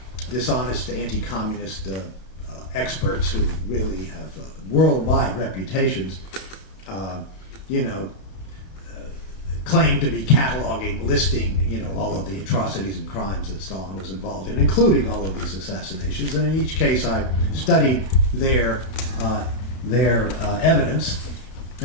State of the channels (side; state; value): right; late; 32 ms